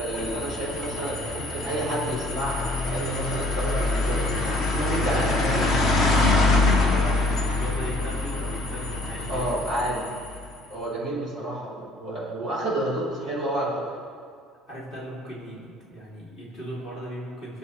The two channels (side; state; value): both; normal; correlation 0.57